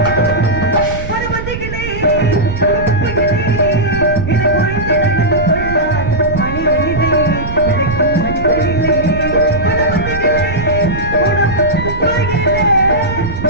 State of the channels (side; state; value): right; noise; rumble, 8 dB below the sound